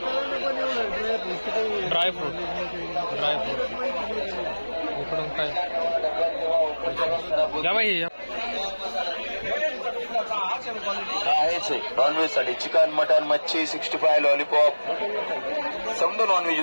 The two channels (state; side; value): inverted; both; correlation -1.00